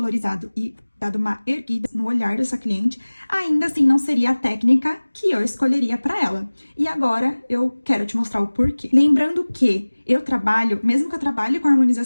e dado uma erguida no olhar dessa cliente, ainda assim não seria a técnica que eu escolheria para ela. E agora eu quero te mostrar o porquê. Lembrando que eu trabalho, mesmo que eu trabalhe com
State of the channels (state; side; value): inverted; both; correlation -1.00